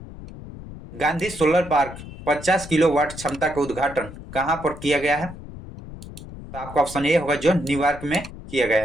गांधी सोलर पार्क 50 किलोवाट क्षमता का उद्घाटन कहां पर किया गया है? तो आपका ऑप्शन ए होगा, जो न्यूयॉर्क में किया गया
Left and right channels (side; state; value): left; noise; rumble, 13 dB below the sound